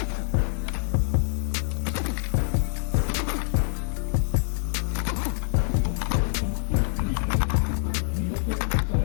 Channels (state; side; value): silent; right; digital silence